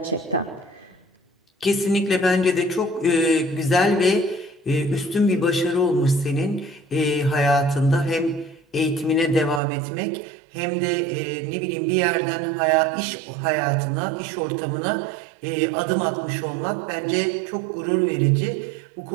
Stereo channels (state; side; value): drops out; left; at 9.6 s